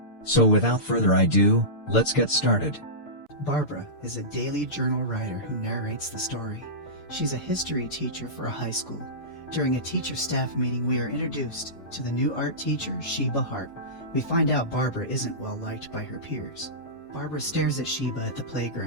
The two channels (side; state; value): right; late; 6.8 ms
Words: So without further ado, let's get started. Barbara is a daily journal writer who narrates the story. She's a history teacher for a high school. During a teacher-staff meeting, we are introduced to the new art teacher, Sheba Hart. We find out Barbara isn't well liked by her peers. Barbara stares at Sheba at the